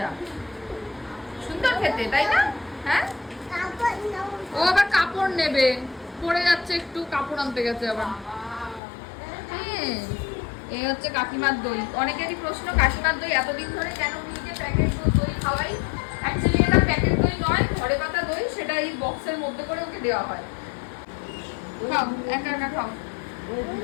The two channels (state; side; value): drops out; right; at 8.8 s